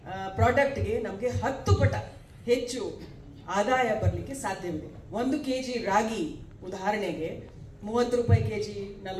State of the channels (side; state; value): both; identical; correlation 1.00